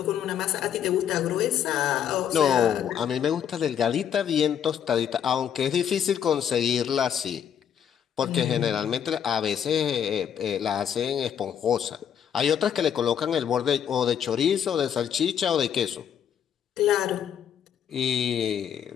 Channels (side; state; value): right; quieter; 8.8 dB